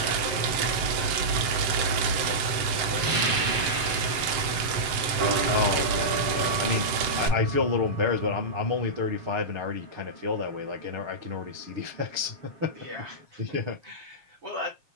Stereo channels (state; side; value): late; left; 7.7 ms